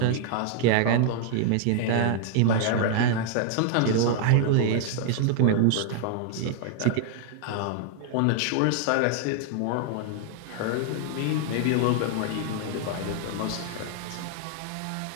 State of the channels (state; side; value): different; both; correlation 0.00